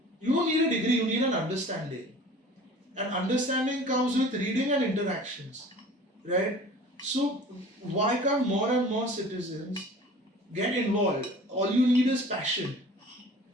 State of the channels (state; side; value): normal; both; correlation 0.44